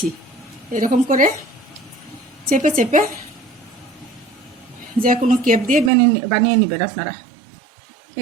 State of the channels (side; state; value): left; drops out; at 5.9 s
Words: এরকম করে চেপে চেপে যে কোনো কেপ দিয়ে বানিয়ে নেবেন আপনারা।